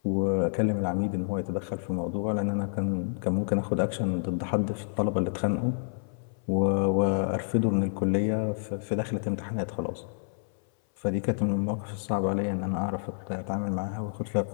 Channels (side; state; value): right; silent; 59 dB below the other